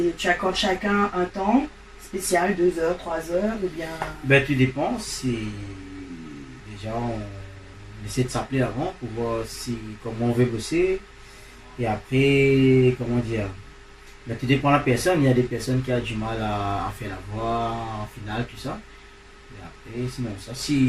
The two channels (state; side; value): identical; both; correlation 1.00